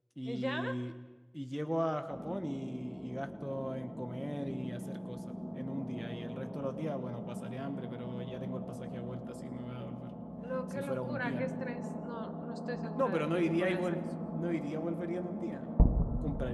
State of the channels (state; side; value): identical; both; correlation 1.00